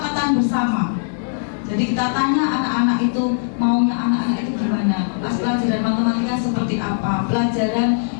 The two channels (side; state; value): right; silent; digital silence